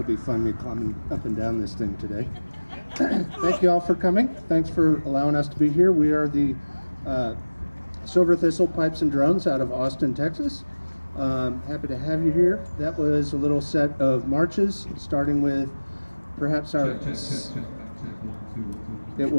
be fun, me climbing up and down this thing today. Thank you all for coming. Thanks for allowing us to be here. We are the Silver Thistle Pipes and Drums out of Austin, Texas. Happy to have you here. That was a little set of marches, starting with perhaps our... It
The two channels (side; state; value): both; inverted; correlation -1.00